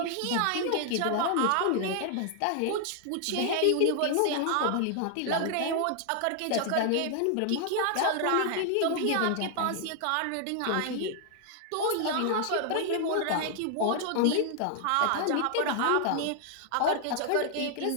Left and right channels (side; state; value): both; different; correlation 0.00